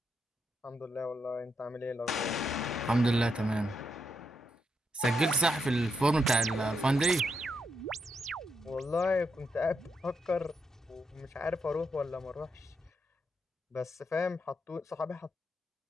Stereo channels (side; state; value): both; normal; correlation 0.81